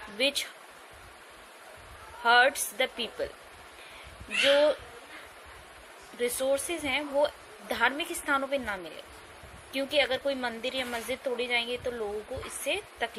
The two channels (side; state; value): both; identical; correlation 1.00